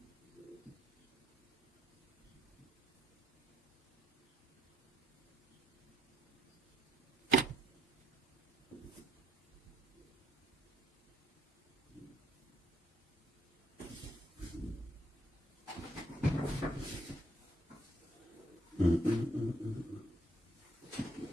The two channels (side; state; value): both; normal; correlation 0.71